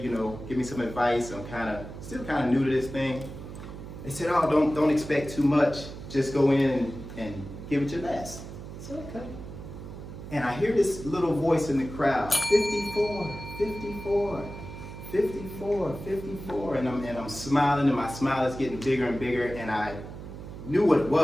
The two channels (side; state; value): right; noise; hum, 11 dB below the sound